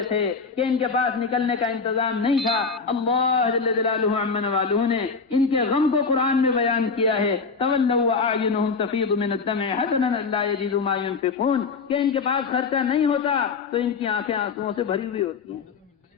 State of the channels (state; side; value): quieter; right; 4.9 dB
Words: تھے کہ ان کے پاس نکلنے کا انتظام نہیں تھا۔ اللہ جل جلالہ عما نوالہ نے ان کے غم کو قرآن میں بیان کیا ہے تولوا واعینہم تفیض من الدمع حزنا الا یجدوا ما ينفقون کہ ان کے پاس خرچہ نہیں ہوتا تو ان کی آنکھیں آنسوؤں سے بھری ہوئی ہوتی ہیں۔